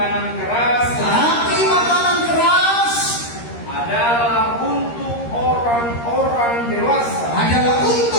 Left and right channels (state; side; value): late; right; 13 ms